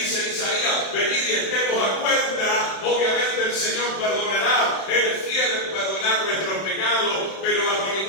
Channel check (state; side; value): late; right; 31 ms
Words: en Isaías, venid y estemos a cuenta. Obviamente el Señor perdonará, Él es fiel en perdonar nuestros pecados, pero bajo